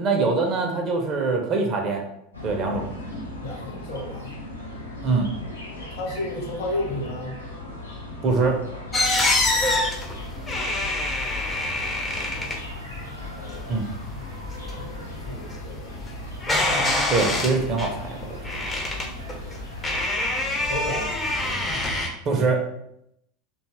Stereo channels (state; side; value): normal; both; correlation 0.36